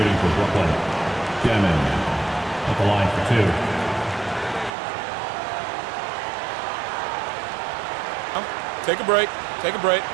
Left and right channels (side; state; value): left; drops out; at 4.7 s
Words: for Brooklyn. Dimon at the line for 2. Take a break. Take a break.